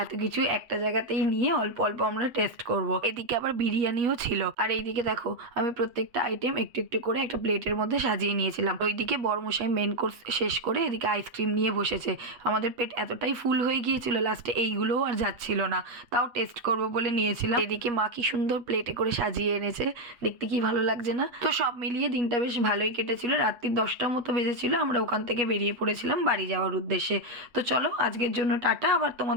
এত কিছু একটা জায়গাতেই নিয়ে অল্প অল্প আমরা টেস্ট করব। এদিকে আবার বিরিয়ানিও ছিল। আর এইদিকে দেখো, আমি প্রত্যেকটা আইটেম একটু একটু করে একটা প্লেটের মধ্যে সাজিয়ে নিয়েছিলাম। ওইদিকে বড়মশাই মেন কোর্স শেষ করে এদিকে আইসক্রিম নিয়ে বসেছে। আমাদের পেট এতটাই ফুল হয়ে গিয়েছিল, লাস্টে এইগুলোও আর যাচ্ছিল না, তাও টেস্ট করব বলে নিয়েছিলাম। এদিকে মা কি সুন্দর প্লেটে করে সাজিয়ে এনেছে, দেখতে কি ভালো লাগছে না? তো সব মিলিয়ে দিনটা বেশ ভালোই কেটেছিল। রাত্রি 10টার মতো বেজেছিল, আমরা ওখান থেকে বেরিয়ে পড়েছিলাম বাড়ি যাওয়ার উদ্দেশ্যে। তো চলো, আজকের জন্য টাটা। আবার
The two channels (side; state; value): left; late; 8.0 ms